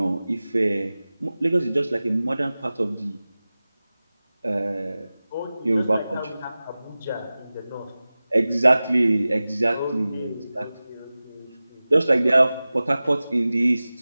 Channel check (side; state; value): both; inverted; correlation -0.97